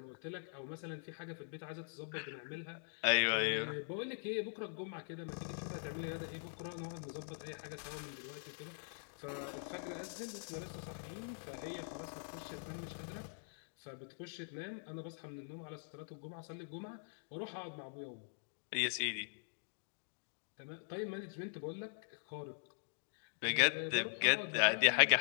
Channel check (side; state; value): right; silent; digital silence